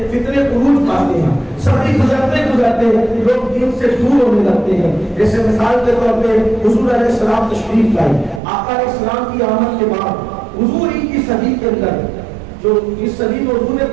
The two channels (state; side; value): drops out; left; at 8.4 s